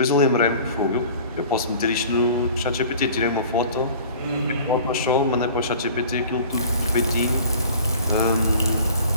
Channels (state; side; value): inverted; both; correlation -0.45